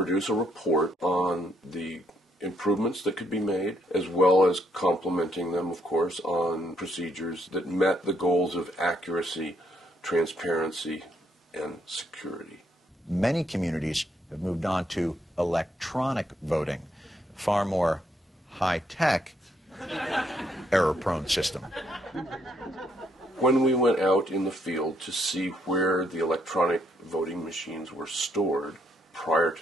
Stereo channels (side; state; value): both; normal; correlation 0.72